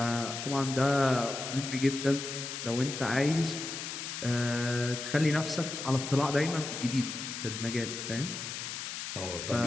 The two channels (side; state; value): left; noise; hiss, 6 dB below the sound